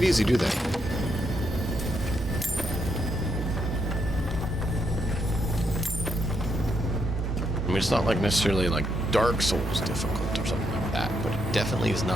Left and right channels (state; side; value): normal; both; correlation 0.78